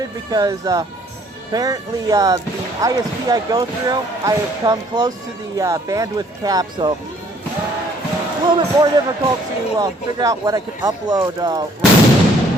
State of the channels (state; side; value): normal; both; correlation 0.61